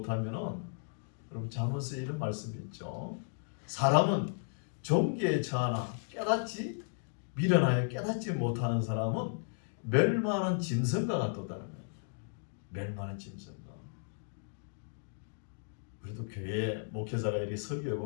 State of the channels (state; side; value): silent; right; digital silence